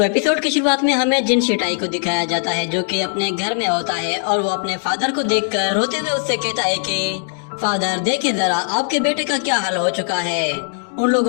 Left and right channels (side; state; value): right; silent; digital silence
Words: एपिसोड की शुरुआत में हमें जिन शिटाई को दिखाया जाता है जो कि अपने घर में होता है और वो अपने फादर को देखकर रोते हुए उससे कहता है कि फादर देखिए जरा आपके बेटे का क्या हाल हो चुका है। उन